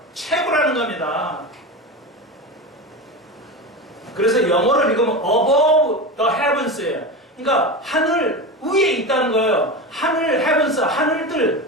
최고라는 겁니다. 그래서 영어를 읽으면 above the heavens예요. 그러니까 하늘 위에 있다는 거예요. 하늘 heavens,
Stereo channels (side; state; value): both; normal; correlation 0.24